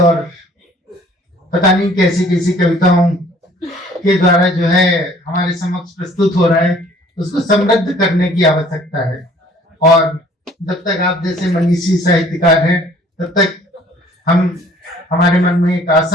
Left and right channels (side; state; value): both; normal; correlation 0.55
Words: पता नहीं कैसी कैसी कविताओं के द्वारा जो है हमारे समक्ष प्रस्तुत हो रहा है, उसको समृद्ध करने की आवश्यकता है। और जब तक आप जैसे मनीषी साहित्यकार हैं, तब तक हमारे मन में एक